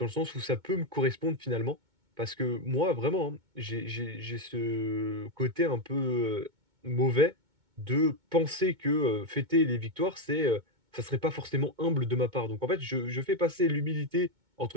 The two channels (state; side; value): late; left; 2.2 ms